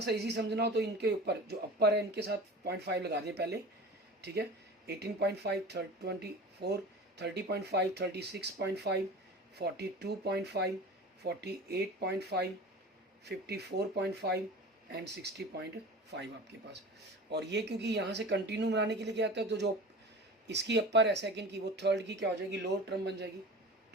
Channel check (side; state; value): both; normal; correlation 0.36